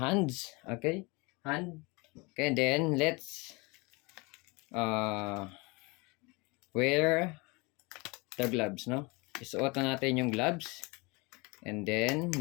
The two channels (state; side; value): quieter; right; 26.8 dB